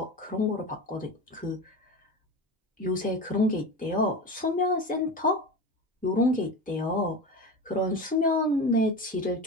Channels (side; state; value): both; normal; correlation 0.27